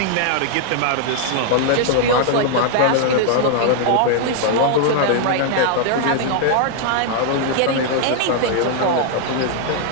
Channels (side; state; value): both; different; correlation 0.00